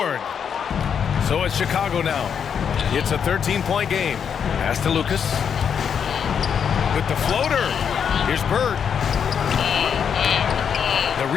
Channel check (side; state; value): right; quieter; 7.4 dB